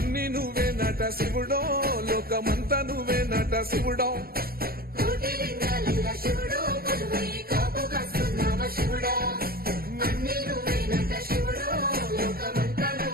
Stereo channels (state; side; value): late; left; 0.44 ms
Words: నువ్వే నట శివుడో లోకమంతా నువ్వే నట శివుడో కోటి లింగాలల్ల శివుడో కొలువై కాపుగాస్తున్నావ శివుడా అన్ని నువ్వే నట శివుడో లోకమంతా